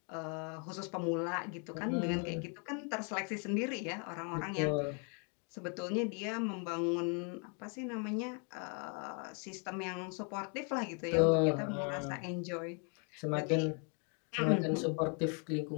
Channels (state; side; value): quieter; right; 38.2 dB